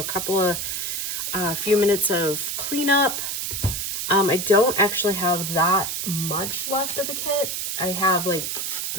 couple of, few minutes of cleanup. I don't actually have that much left of the kit. I have like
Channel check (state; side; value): noise; right; hiss, 2 dB below the sound